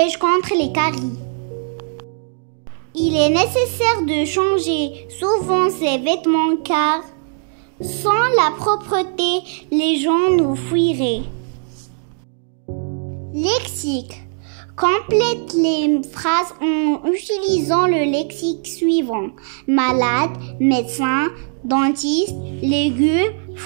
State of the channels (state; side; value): silent; left; 66 dB below the other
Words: contre les caries. Il est nécessaire de changer souvent ses vêtements car sans la propreté, les gens nous fuiraient. Lexique. Complète les phrases en utilisant le lexique suivant. Malade, médecin, dentiste, légumes,